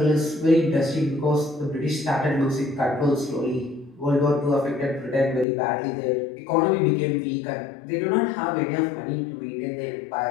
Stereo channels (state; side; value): drops out; right; at 5.5 s